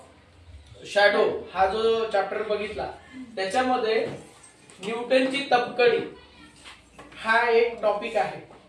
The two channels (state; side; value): identical; both; correlation 1.00